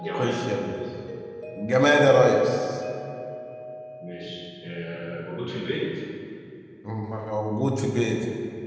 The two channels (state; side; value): identical; both; correlation 1.00